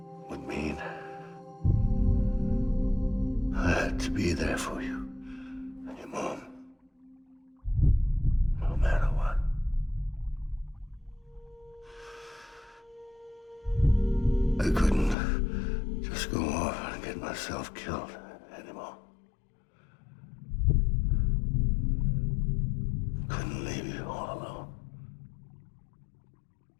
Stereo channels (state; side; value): drops out; right; at 15.2 s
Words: would mean. I had to be there for you and your mom, no matter what. I couldn't just go off and get myself killed anymore. Couldn't leave you all alone.